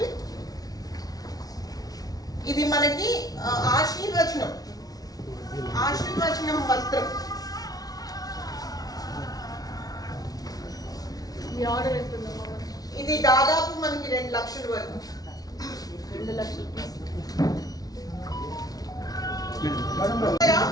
ఇది మనకి ఆశీర్వచనం వస్త్రం. ఇది దాదాపు మనకి 2 లక్షల వరకు. 2 లక్షలు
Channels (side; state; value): right; late; 0.18 ms